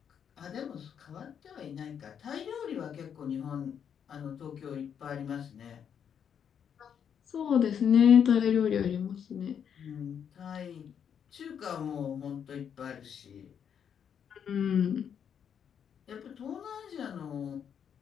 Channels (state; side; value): quieter; right; 8.1 dB